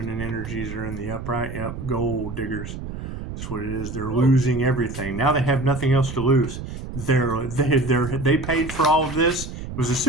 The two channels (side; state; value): right; noise; rumble, 8 dB below the sound